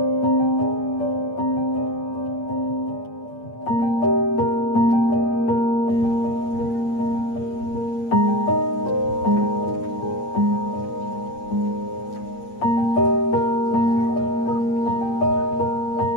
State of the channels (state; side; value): late; right; 8.8 ms